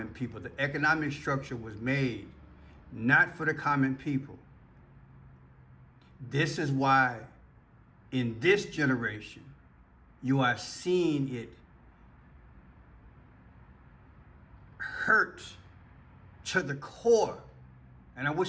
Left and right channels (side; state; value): both; identical; correlation 1.00